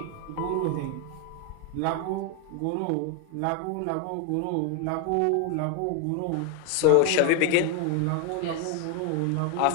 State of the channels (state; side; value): different; both; correlation 0.01